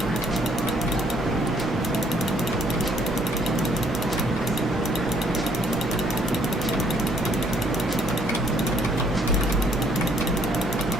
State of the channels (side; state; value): both; normal; correlation 0.64